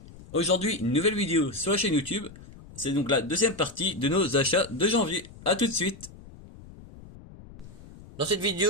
Aujourd'hui, une nouvelle vidéo sur la chaîne YouTube. C'est donc la deuxième partie de nos achats de janvier. A tout de suite. Dans cette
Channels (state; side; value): noise; left; rumble, 19 dB below the sound